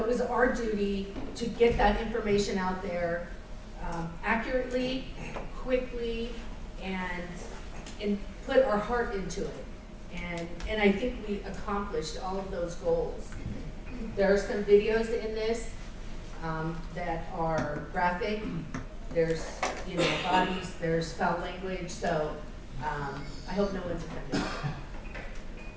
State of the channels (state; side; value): identical; both; correlation 1.00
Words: was our duty to get that information out there accurately, quickly, and put our heart into it. And I think we accomplished all of those goals. There are some videos in this that are graphic. There's, bodies, there's foul language, so I hope no one's offended.